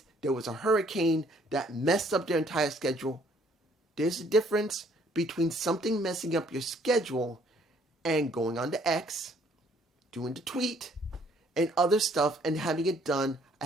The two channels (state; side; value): normal; both; correlation 0.63